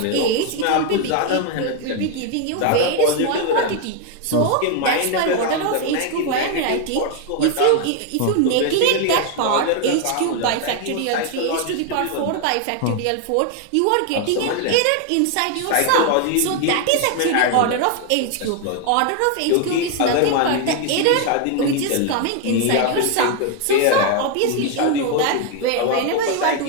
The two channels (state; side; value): different; both; correlation 0.00